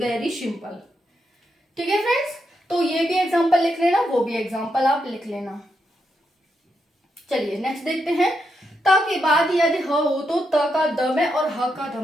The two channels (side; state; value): both; normal; correlation 0.83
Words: सिंपल, ठीक है फ्रेंड्स। तो ये भी एग्जांपल लिख लेना, वो भी एग्जांपल आप लिख लेना। चलिए नेक्स्ट देखते हैं, त के बाद यदि ह हो तो त का द में और ह का ध